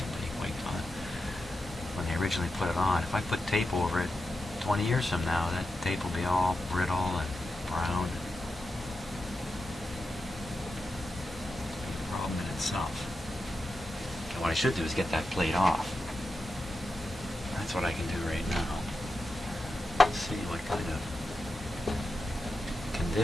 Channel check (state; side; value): normal; both; correlation 0.89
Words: wiped on when they originally put it on. If I put tape over it 20 years from now, that tape will be all brittle and brown. It'll be a problem in itself. And what I should do is get that plate off. That's what I can do right now. Let's see what kind of